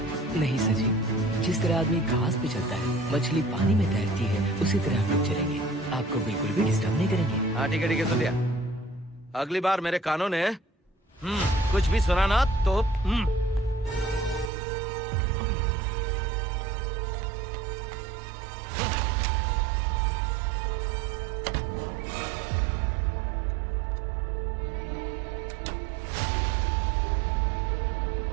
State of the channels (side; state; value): left; drops out; at 14.5 s